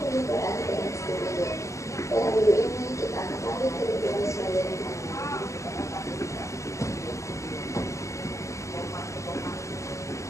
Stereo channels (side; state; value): right; late; 0.15 ms